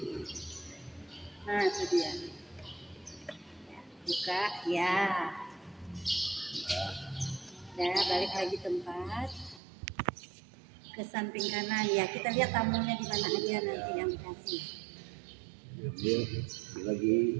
Nah, itu dia. Buka, ya. Ya, balik lagi tempat. Ke samping kanan, ya. Kita lihat tamunya di mana aja nanti yang dikasih. Dia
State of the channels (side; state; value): left; drops out; at 9.6 s